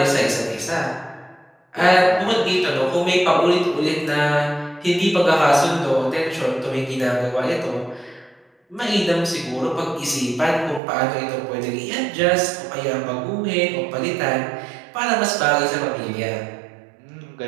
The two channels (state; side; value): drops out; left; at 10.8 s